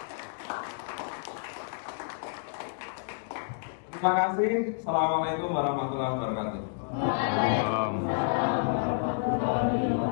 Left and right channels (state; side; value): silent; right; digital silence